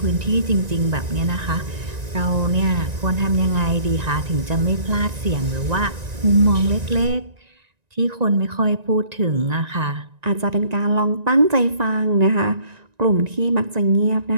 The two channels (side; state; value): left; late; 1.9 ms